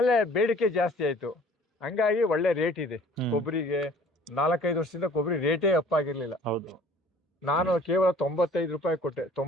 ಬೇಡಿಕೆ ಜಾಸ್ತಿ ಆಯ್ತು, ಹಂಗಾಗಿ ಒಳ್ಳೆ ರೇಟ್ ಇದೆ ಕೊಬ್ಬರಿಗೆ. 4-5 ವರ್ಷದಿಂದ ಕೊಬ್ಬರಿ ರೇಟೇ ಅಪ್ ಆಗಿರ್ಲಿಲ್ಲ. ಹೌದು. ನಾನು ಕೇವಲ 95 ರೂಪಾಯಿ ಕೊಟ್ಟೆ,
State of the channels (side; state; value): both; normal; correlation 0.52